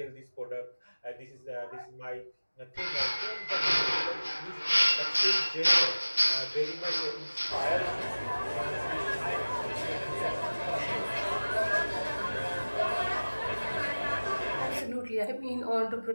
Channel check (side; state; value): both; inverted; correlation -1.00